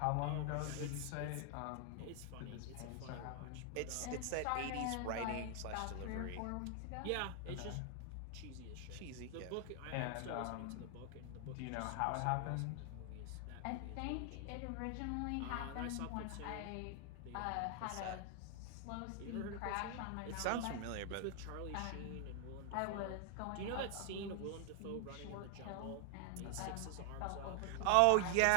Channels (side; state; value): both; different; correlation 0.00